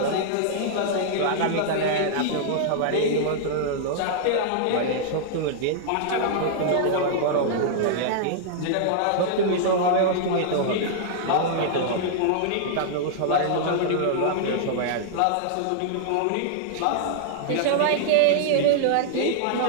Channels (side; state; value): both; different; correlation -0.01